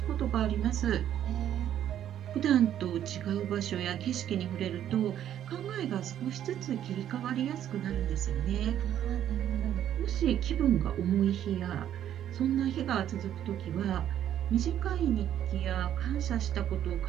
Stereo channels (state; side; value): quieter; left; 10.8 dB